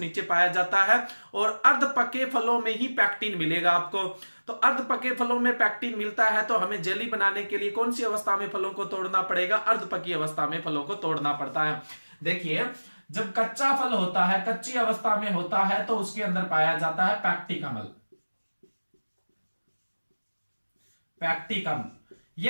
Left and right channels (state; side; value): inverted; both; correlation -1.00